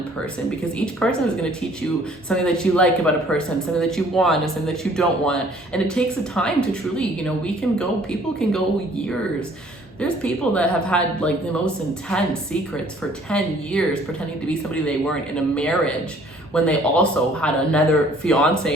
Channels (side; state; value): both; normal; correlation 0.57